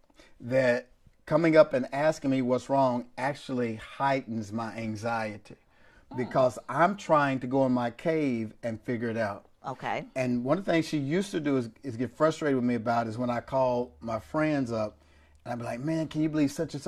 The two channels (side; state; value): both; identical; correlation 1.00